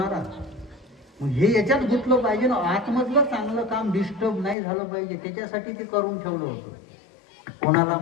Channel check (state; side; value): drops out; right; at 4.5 s